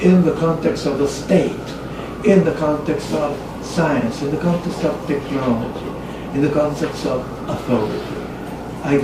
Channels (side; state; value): both; identical; correlation 1.00